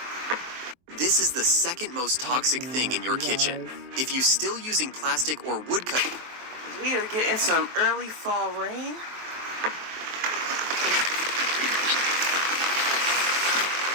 This is the second most toxic thing in your kitchen. If you're still using plastic or wood cut... We are getting some early fall rain.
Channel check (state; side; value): late; left; 23 ms